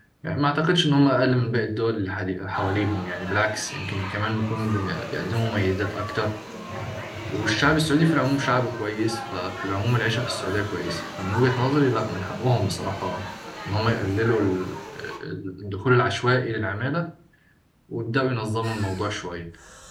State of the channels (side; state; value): both; identical; correlation 1.00